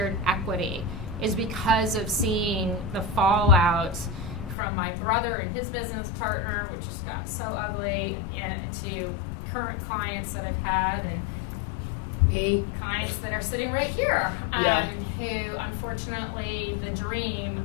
equity, is because of seeing the fallout from my brother and his business partner, which just got so ugly, to current clients that I've had, and clients that are sitting right here, who unfortunately the dream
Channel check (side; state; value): right; drops out; at 4.5 s